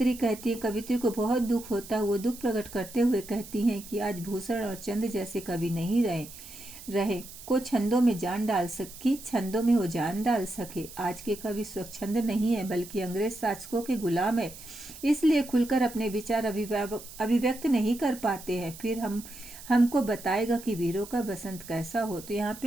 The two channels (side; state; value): right; noise; hiss, 15 dB below the sound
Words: कहती है, कवित्री को बहुत दुख होता है। वो दुख प्रकट करते हुए कहती हैं कि आज भूषण और चंद जैसे कवि नहीं रहे को छंदों में वो जान डाल सके। आज के कवि स्वच्छंद नहीं है बल्कि अंग्रेज शासकों के गुलाम है, इसलिए खुलकर अपने विचार अभिव्यक्त नहीं कर पाते हैं। फिर हमको बताएगा कि वीरों का बसंत कैसा हो। तो यहाँ